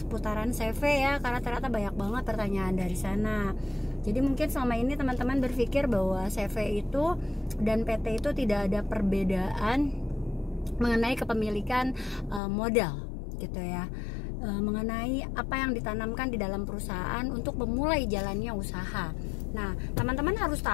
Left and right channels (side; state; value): right; drops out; at 12.4 s